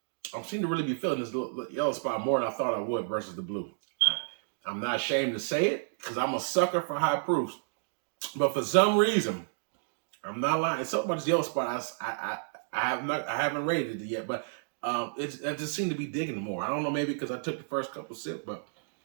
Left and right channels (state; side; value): silent; left; digital silence